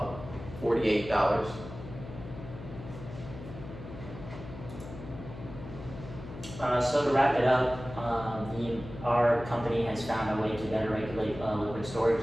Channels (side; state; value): left; noise; hum, 12 dB below the sound